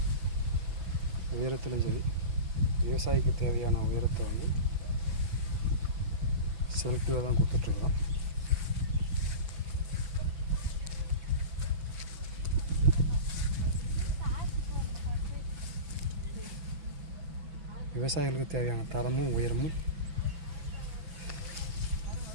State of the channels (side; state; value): left; late; 6.0 ms